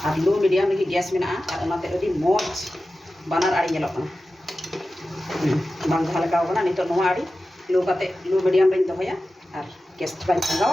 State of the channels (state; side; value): normal; both; correlation 0.94